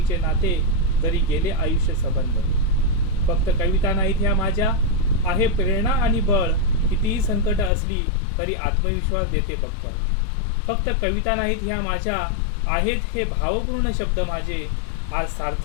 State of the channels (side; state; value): right; drops out; at 7.7 s